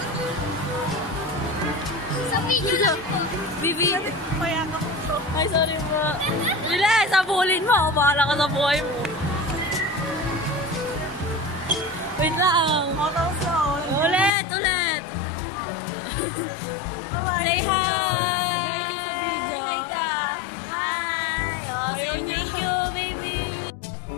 Sa video lang po. Bibi. Mayakap. Ay, sorry po. Bilis, sabulin mo. Bahala ka sa buhay mo. Wait lang. Ulit. Bye-bye. Say hi. Hi ka. Hi. Oh, say thank you, baby.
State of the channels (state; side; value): drops out; right; at 14.3 s